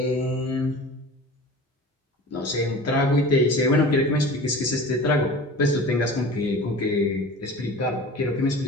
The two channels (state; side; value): normal; both; correlation 0.38